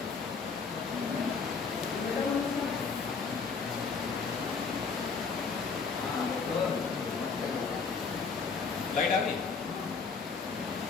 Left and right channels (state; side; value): quieter; right; 5.1 dB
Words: लाइट आ गई।